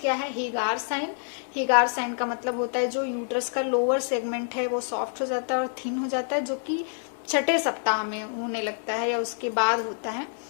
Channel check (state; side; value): silent; right; digital silence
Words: क्या है, हेगार साइन। हेगार साइन का मतलब होता है जो यूट्रस का लोअर सेगमेंट है वो सॉफ्ट हो जाता है और थिन हो जाता है, जो कि 6ठे सप्ताह में होने लगता है या उसके बाद होता है।